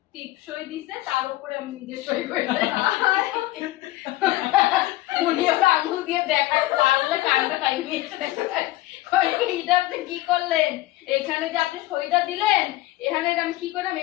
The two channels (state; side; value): quieter; right; 17.2 dB